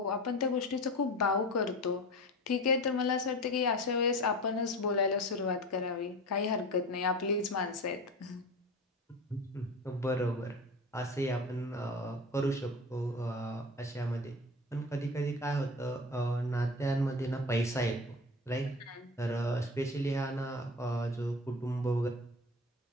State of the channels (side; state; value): both; normal; correlation 0.31